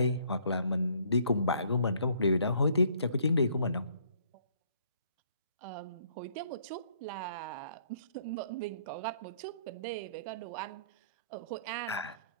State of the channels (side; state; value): both; inverted; correlation -0.63